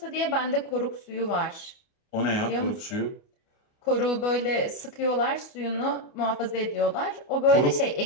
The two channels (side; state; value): right; late; 29 ms